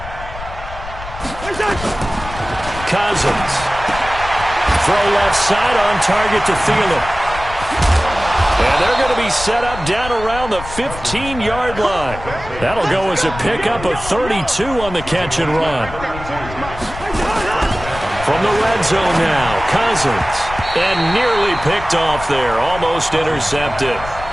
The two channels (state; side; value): noise; left; rumble, 12 dB below the sound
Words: Cousins. Throw left side on target to Thielen. And they're going to be set up down around the 15-yard line. That'll go as a pickup of 32 on the catch and run. From the red zone now, Cousins. And nearly picked off there, almost intercepted.